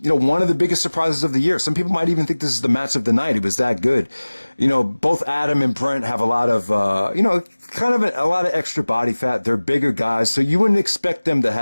one of the biggest surprises of the year. Some people might even think this is the match of the night. It was that good. Both Adam and Brent have a lot of, kind of a lot of extra body fat. They're bigger guys, so you wouldn't expect them to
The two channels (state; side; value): inverted; both; correlation -1.00